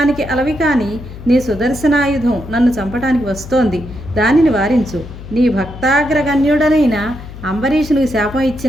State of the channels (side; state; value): left; noise; hum, 14 dB below the sound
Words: అలవి కాని నీ సుదర్శనాయుధం నన్ను చంపటానికి వస్తోంది, దానిని వారించు. నీ భక్తాగ్రగణ్యుడనైన అంబరీషునికి శాపం